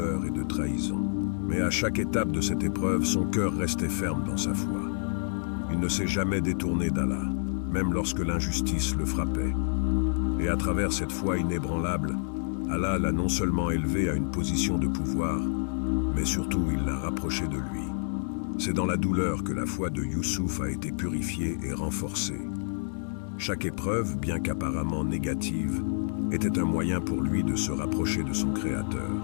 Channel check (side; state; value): right; silent; digital silence